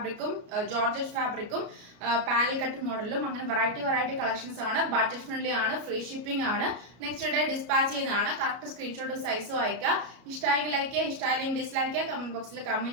georgette ഫാബ്രിക്കും panel cut മോഡലും അങ്ങനെ വെറൈറ്റി കളക്ഷൻസ് ആണ്. ബഡ്ജറ്റ് ഫ്രണ്ട്ലി ആണ്, ഫ്രീ ഷിപ്പിംഗ് ആണ്. നെക്സ്റ്റ് ഡേ ഡിസ്പാച്ച് ചെയ്യുന്നതാണ്. കറക്റ്റ് സ്ക്രീൻഷോട്ട് സൈസും അയക്കുക. ഇഷ്ടമായെങ്കിൽ ലൈക്ക് ചെയ്യുക, ഇഷ്ടമായില്ലെങ്കിൽ ഡിസ്ലൈക്ക് ചെയ്യുക, കമന്റ് ബോക്സിൽ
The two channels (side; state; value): left; late; 33 ms